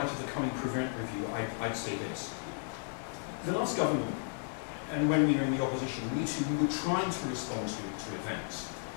of the coming Prevent review, I'd say this. The last government, and when we were in the opposition, we were trying to respond to events.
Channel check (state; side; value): silent; right; 55 dB below the other